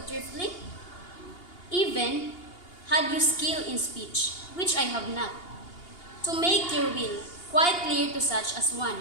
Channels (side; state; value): right; late; 2.8 ms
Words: thriftling? Even had you skill in speech, which I have not, to make your will quite clear to such as one,